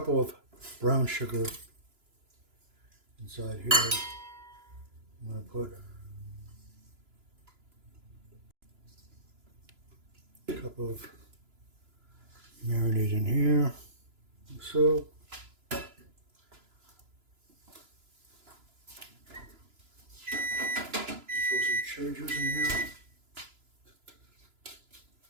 of brown sugar inside here. I'm going to put a cup of marinade in here, like so. Throw some cherry juice in here,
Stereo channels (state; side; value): late; left; 2.9 ms